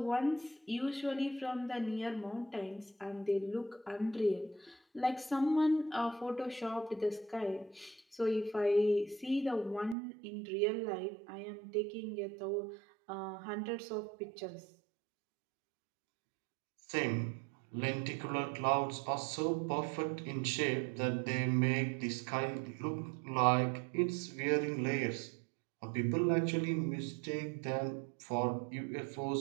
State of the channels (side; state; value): left; drops out; at 10.0 s